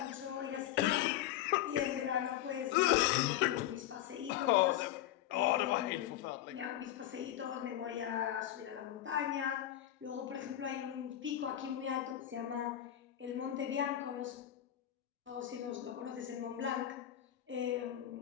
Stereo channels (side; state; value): right; quieter; 12.3 dB